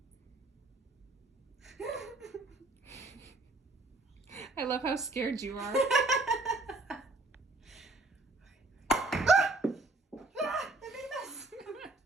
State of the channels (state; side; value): quieter; left; 3.1 dB